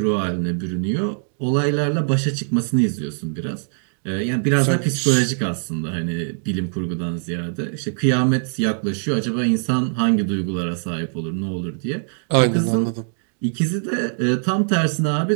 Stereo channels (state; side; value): silent; left; digital silence